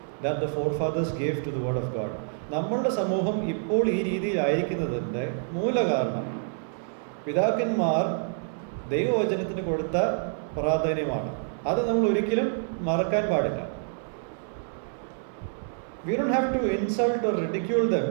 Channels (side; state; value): left; silent; 60 dB below the other